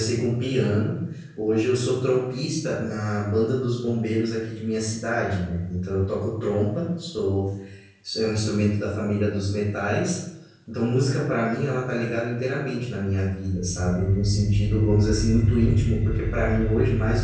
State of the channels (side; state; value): both; identical; correlation 1.00